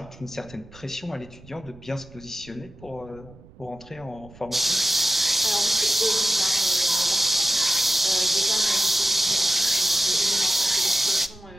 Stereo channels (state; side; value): noise; right; rumble, 22 dB below the sound